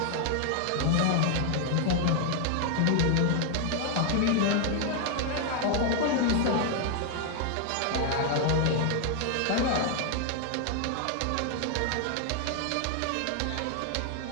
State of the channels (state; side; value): different; both; correlation 0.00